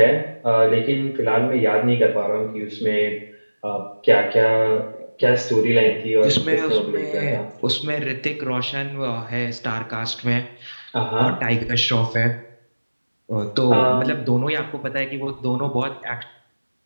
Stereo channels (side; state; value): both; inverted; correlation -1.00